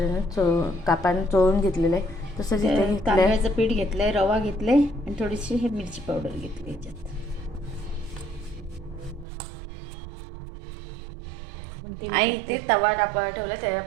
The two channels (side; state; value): left; drops out; at 9.2 s